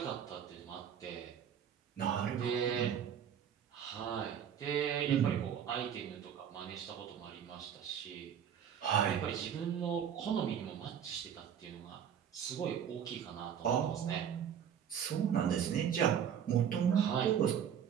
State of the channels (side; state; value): left; quieter; 8.6 dB